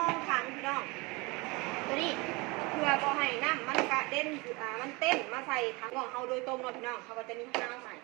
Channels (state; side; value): quieter; left; 25.8 dB